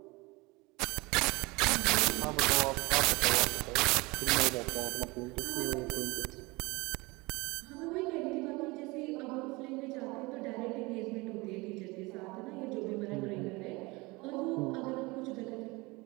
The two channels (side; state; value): left; quieter; 23.9 dB